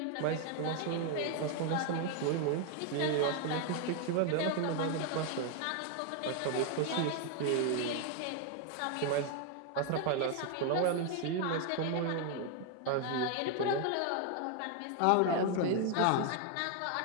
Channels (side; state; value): both; different; correlation 0.01